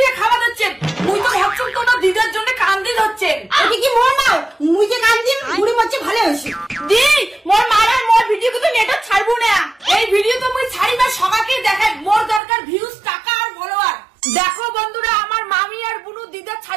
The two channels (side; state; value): left; drops out; at 12.4 s